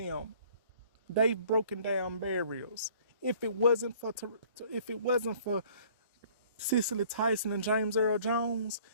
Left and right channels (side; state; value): both; inverted; correlation -0.55